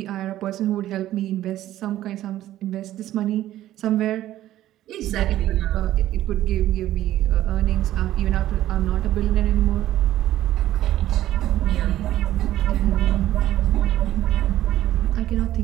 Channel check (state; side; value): quieter; left; 13.7 dB